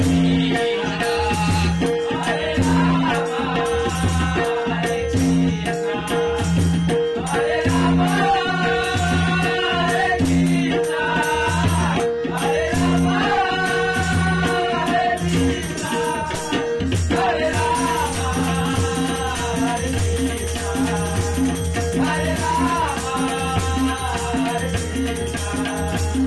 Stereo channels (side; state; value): both; identical; correlation 1.00